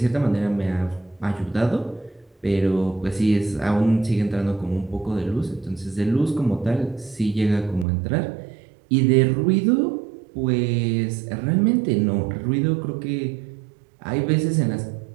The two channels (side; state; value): left; drops out; at 7.9 s